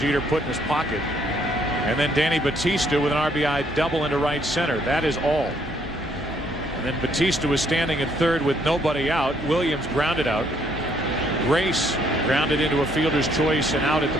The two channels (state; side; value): normal; both; correlation 0.68